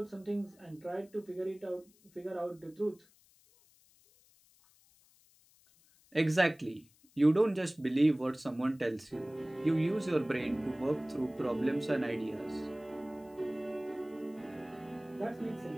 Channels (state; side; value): noise; left; hiss, 30 dB below the sound